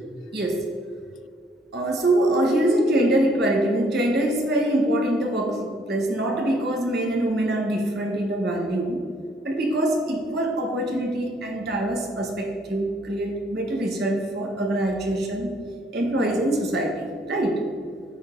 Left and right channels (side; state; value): both; normal; correlation 0.65